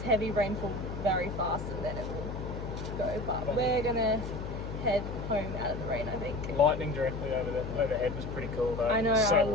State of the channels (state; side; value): noise; left; hum, 6 dB below the sound